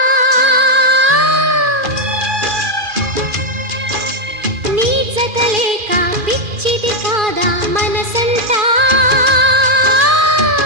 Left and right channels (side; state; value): left; late; 2.4 ms